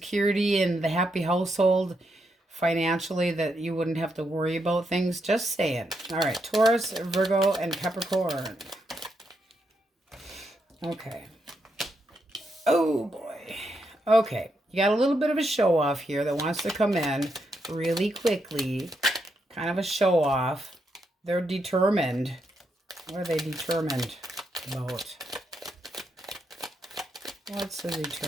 in the happy household financially, that you wouldn't have to worry about things. Just saying. All right, Taurus, Virgo, and Capricorn. Okay. Oh, boy. Okay, you got a little bit of a show off here that wants to come in really quickly. Kind of a show off. They're determined. What are they determined about? What's the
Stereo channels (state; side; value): normal; both; correlation 0.81